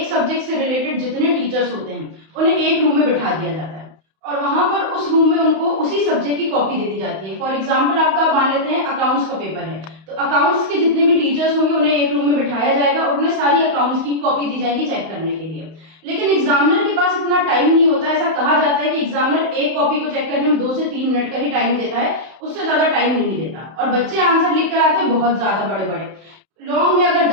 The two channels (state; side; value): late; left; 31 ms